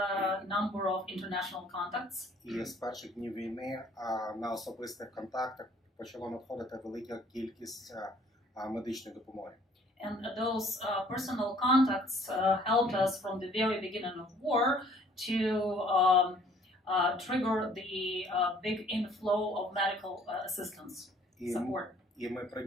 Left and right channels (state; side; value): normal; both; correlation 0.58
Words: number of international contacts. І з перших днів війни на особистих контактах почало надходити велика кількість медичної допомоги. And those personal contacts helped us from the very beginning of war to trigger the big inflow of medical assistance support. І ми